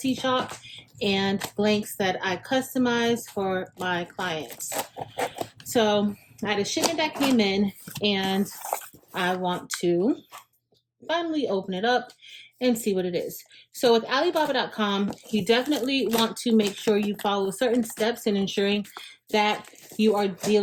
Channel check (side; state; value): both; identical; correlation 1.00